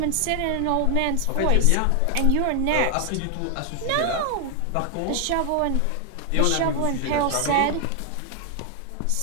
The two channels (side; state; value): both; different; correlation 0.00